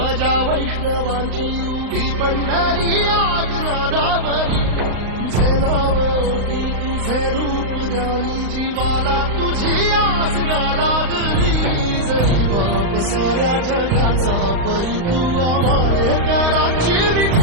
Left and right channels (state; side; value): late; left; 35 ms